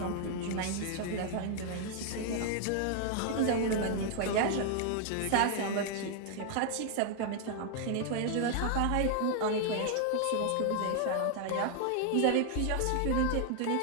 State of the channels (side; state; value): both; different; correlation 0.00